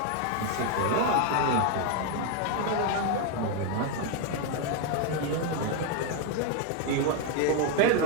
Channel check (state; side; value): different; both; correlation 0.01